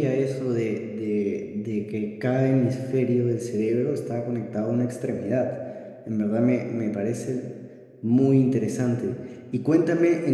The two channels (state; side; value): identical; both; correlation 1.00